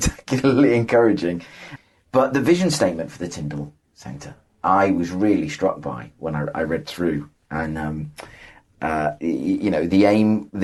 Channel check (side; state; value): both; identical; correlation 1.00